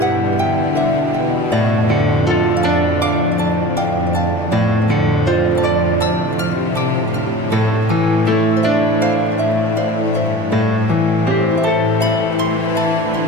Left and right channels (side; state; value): both; normal; correlation 0.39